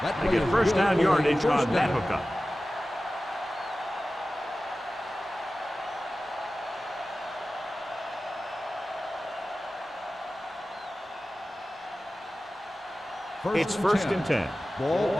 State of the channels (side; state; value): both; normal; correlation 0.96